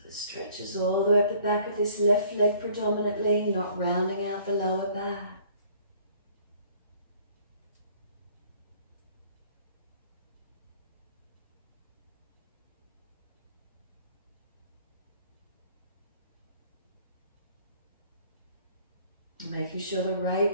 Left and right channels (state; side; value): inverted; both; correlation -0.56